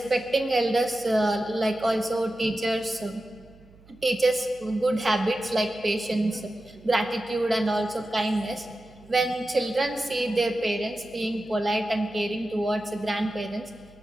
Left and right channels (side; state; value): right; noise; hum, 25 dB below the sound